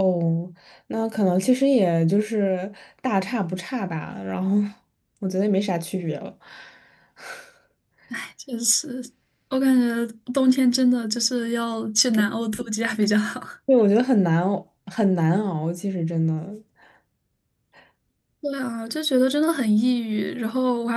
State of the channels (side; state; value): both; identical; correlation 1.00